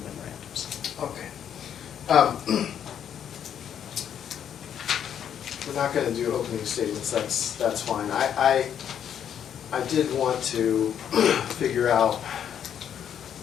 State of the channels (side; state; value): right; quieter; 9.1 dB